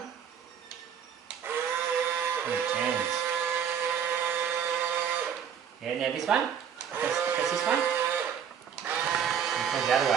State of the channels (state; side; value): quieter; left; 8.1 dB